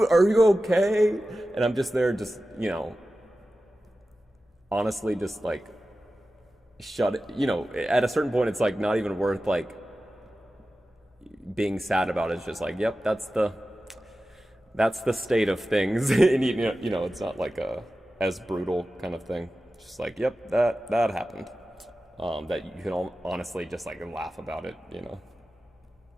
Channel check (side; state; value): both; normal; correlation 0.94